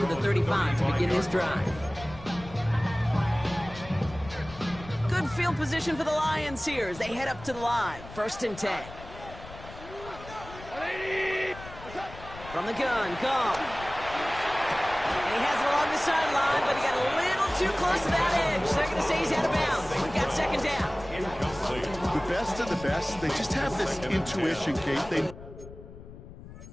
the 35 to begin this drive. Good field position for the Lions here as they head up to the line. 1st and 10. From the gun, Goff. And he has it along the sideline, but he got a little too close to that edge. They're going to say he's out of bounds. We've got 2nd down. The best of the best, they just have this intuition, Kate. They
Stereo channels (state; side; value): noise; left; rumble, 16 dB below the sound